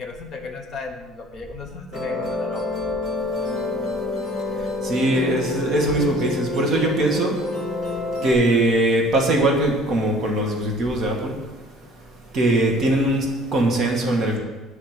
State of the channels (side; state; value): both; normal; correlation 0.51